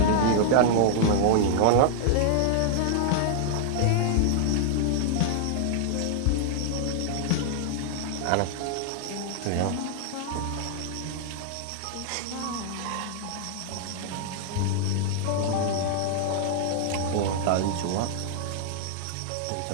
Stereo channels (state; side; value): different; both; correlation -0.01